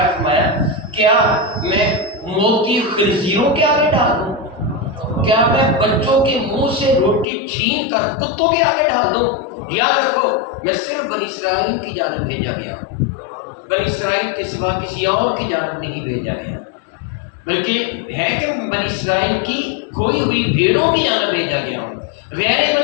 فرمایا، کیا میں موتی خنزیروں کے آگے ڈال دوں؟ کیا میں بچوں کے منہ سے روٹی چھین کر کتوں کے آگے ڈال دوں؟ یاد رکھو، میں صرف بنی اسرائیل کی جانب بھیجا گیا ہوں، بنی اسرائیل کے سوا کسی اور کی جانب نہیں بھیجا گیا، بلکہ ہے کہ بنی اسرائیل کی کھوئی ہوئی بھیڑوں کی جانب بھیجا گیا ہوں، غیر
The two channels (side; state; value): right; drops out; at 7.2 s